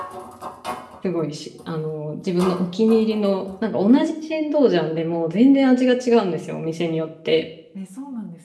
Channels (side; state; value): both; identical; correlation 1.00